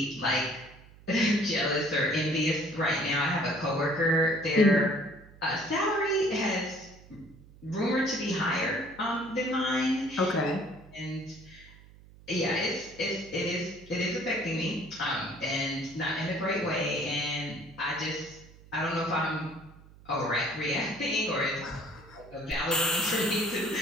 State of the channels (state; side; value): noise; right; hum, 22 dB below the sound